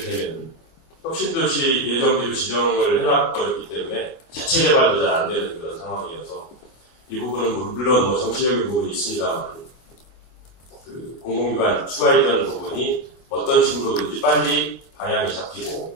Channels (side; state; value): right; late; 25 ms